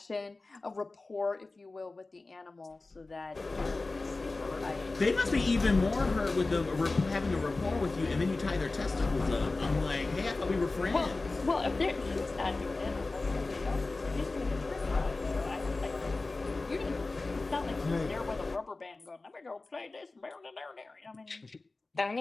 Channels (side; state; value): right; quieter; 3.4 dB